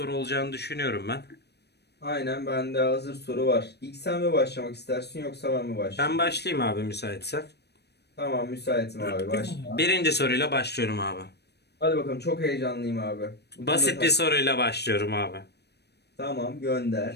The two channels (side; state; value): right; late; 0.48 ms